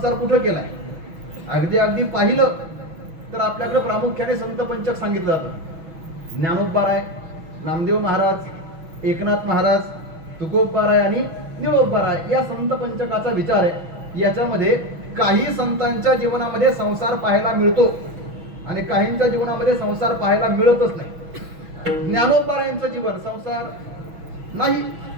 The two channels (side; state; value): left; late; 6.1 ms